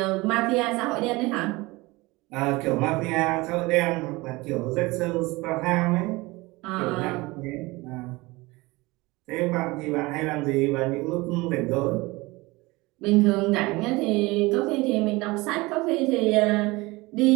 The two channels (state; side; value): quieter; left; 22.4 dB